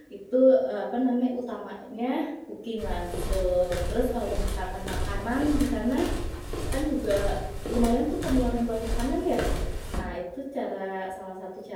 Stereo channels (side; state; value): both; identical; correlation 1.00